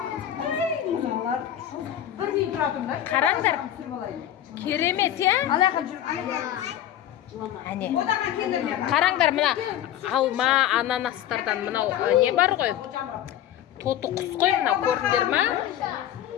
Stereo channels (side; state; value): right; quieter; 11.5 dB